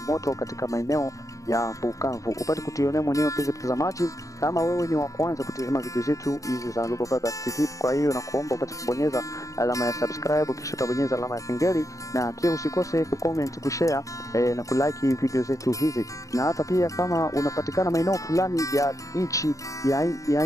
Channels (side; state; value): right; late; 0.16 ms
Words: moto katika maeneo ya Bukavu. Upate kutionea mwenyewe mpenzi mtazamaji, kama wewe ni wa kwanza kutazama video zetu hizi za Global Vibes TV. Kwa hiyo nakuomba upate kubonyeza alama ya subscribe, kisha utabonyeza alama ya kengele, na pia usikose kucomment, kushare na kulike video zetu hizi. Na hata pia kama unapatikana maeneo fulani ya nchi ya